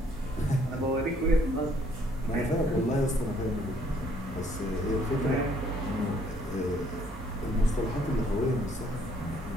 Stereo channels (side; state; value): both; normal; correlation 0.64